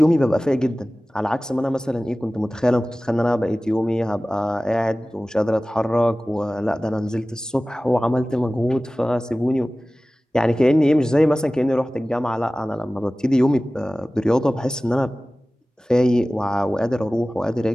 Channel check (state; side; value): normal; both; correlation 0.97